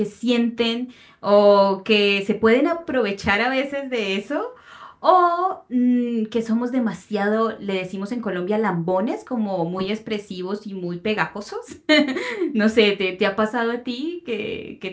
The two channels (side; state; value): both; identical; correlation 1.00